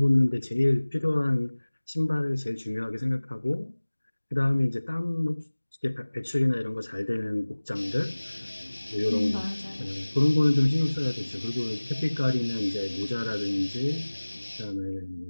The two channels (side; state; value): both; inverted; correlation -1.00